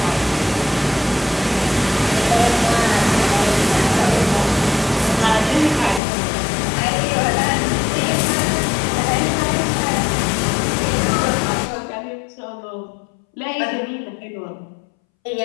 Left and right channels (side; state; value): right; drops out; at 6.0 s